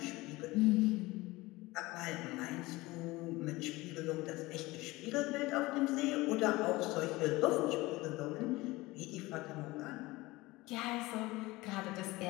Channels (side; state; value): right; quieter; 20.5 dB